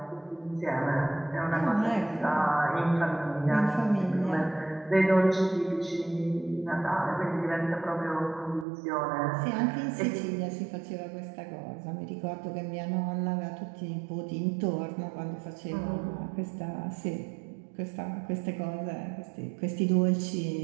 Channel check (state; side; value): drops out; left; at 8.7 s